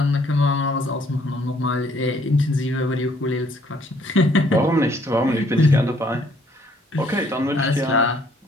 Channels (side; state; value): both; normal; correlation 0.64